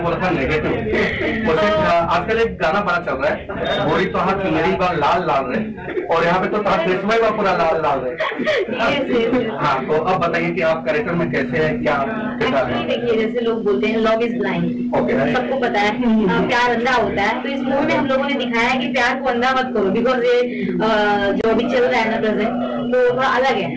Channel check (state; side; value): identical; both; correlation 1.00